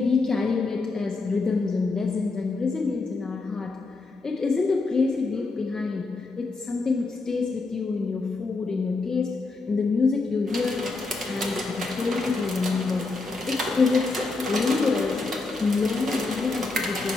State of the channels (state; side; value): quieter; right; 3.7 dB